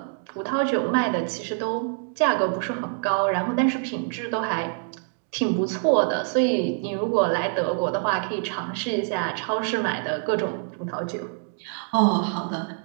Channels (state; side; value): silent; left; 55 dB below the other